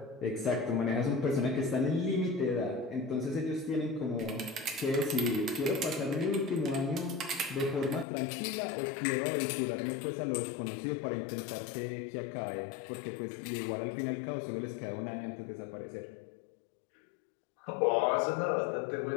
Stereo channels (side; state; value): right; drops out; at 8.1 s